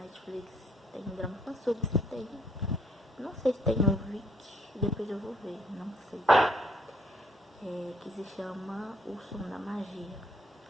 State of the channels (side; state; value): both; normal; correlation 0.68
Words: Netflix, tem drama fansub, tem. Não sei se tem no Viki, depois eu vou ver, não sei. Que se chama O Som da Magia.